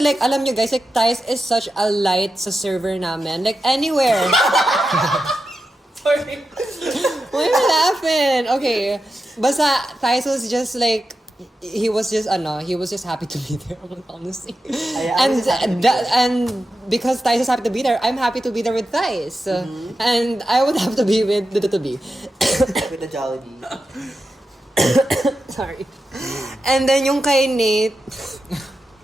like alam nyo guys, like Thais is such a light sa server namin. Like anywhere. Sorry. Why are you laughing? Okay. Basta Thais was just like he was just happy to be there, honestly. And because Thais is happy to be there, I'm happy to be there with Thais. And I would have to be with the With the Jollibee. Sorry. And then yung kay Nate,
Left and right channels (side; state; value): both; normal; correlation 0.90